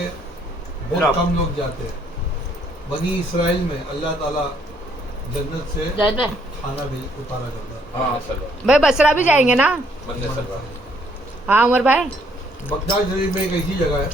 बहुत कम लोग जाते हैं। बनी इसराइल में अल्लाह ताला जन्नत से खाना भी उतारा करता है। हाँ सल्लल्लाहु भाई बसरा भी जाएंगे ना? बंदे सल्लल्लाहु। हाँ उमर भाई। बगदाद शरीफ में एक ऐसी जगह है,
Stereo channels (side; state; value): both; normal; correlation 0.67